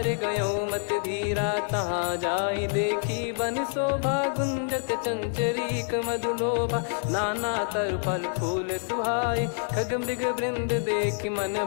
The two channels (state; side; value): silent; right; digital silence